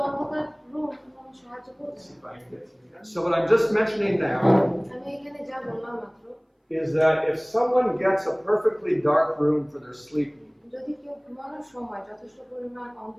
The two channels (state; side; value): identical; both; correlation 1.00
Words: অন্ধকার রুম কোনো সাহায্য করবে না। So what I'm just mentioning now আমি এখানে যা বললাম মাত্র, is that if someone gets a perfectly dark room for their sleeping, যদি কেউ ঘুমানোর সময় যথেষ্ট পরিমাণ